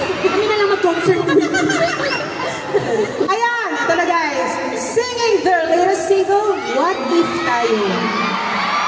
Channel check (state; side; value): identical; both; correlation 1.00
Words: Kami na lang mag-concert. Ayan, ito na guys. Singing their latest single, What If tayo.